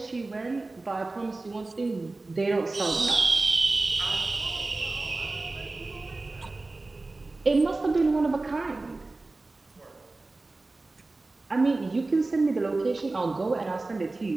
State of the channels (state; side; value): quieter; left; 3.3 dB